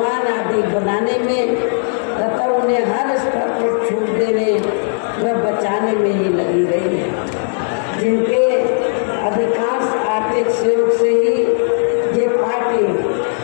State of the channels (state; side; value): silent; right; 62 dB below the other